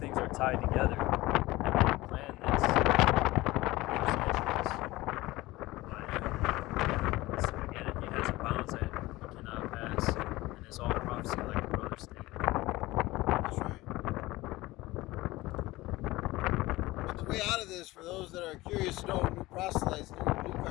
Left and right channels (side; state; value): right; quieter; 19.2 dB